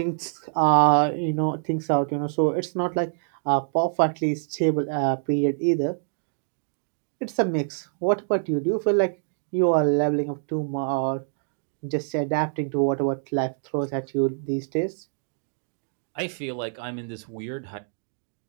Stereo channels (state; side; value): silent; left; digital silence